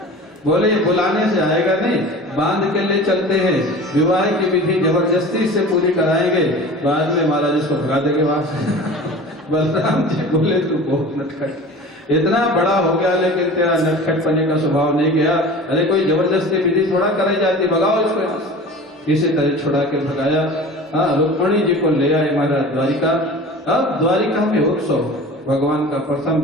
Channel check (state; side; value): normal; both; correlation 0.38